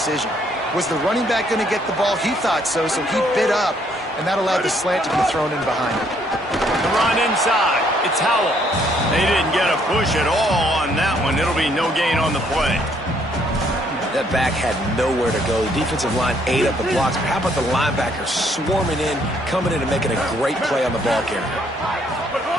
Was the running back going to get the ball? He thought so, so he bit up, and that allowed the slant to be thrown in behind him. The run inside. It's Howell. They didn't get a push at all on that one. It'll be no gain on the play. That back had nowhere to go. The defensive line ate up the blocks. But how about the linebacker swarming in, coming in and making a great play on the ball carrier?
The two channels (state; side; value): normal; both; correlation 0.68